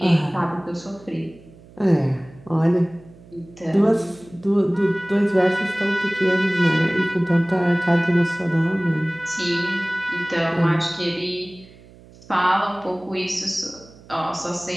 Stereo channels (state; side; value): noise; right; hum, 23 dB below the sound